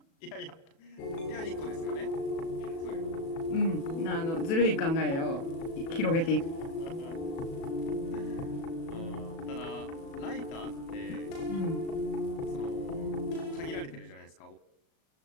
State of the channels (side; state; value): right; late; 37 ms